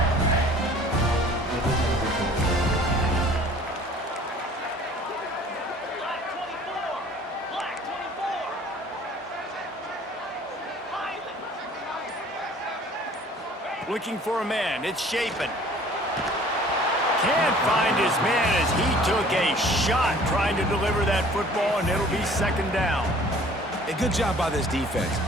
Looking for a man. It's Shapen. Can't find his man as he took a shot trying to deliver that football, and it'll be second down. A good job by this defense.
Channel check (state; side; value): normal; both; correlation 0.51